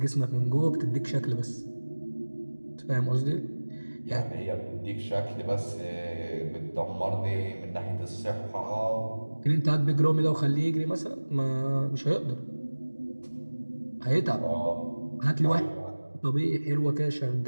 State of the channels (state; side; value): inverted; both; correlation -1.00